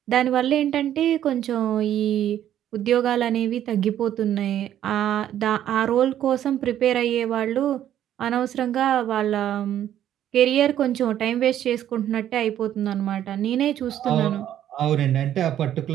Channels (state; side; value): quieter; left; 11.2 dB